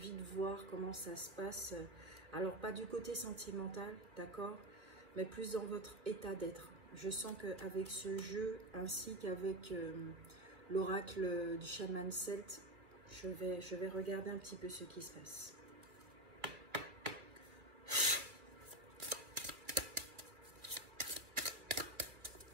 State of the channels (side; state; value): left; late; 2.4 ms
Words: de voir comment ça se passe. Alors pas du côté sentimental, d'accord, mais plus dans votre état d'être. Je sens qu'avec ce jeu, ainsi qu'avec l'oracle du chaman celte, je vais regarder un petit peu ce qui se passe.